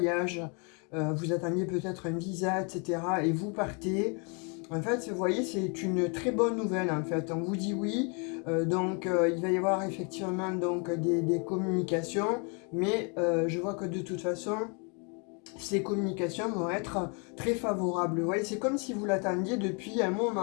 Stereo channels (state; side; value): quieter; right; 35.1 dB